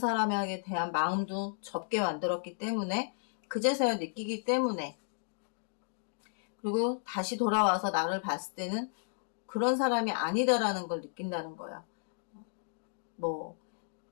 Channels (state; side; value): silent; right; digital silence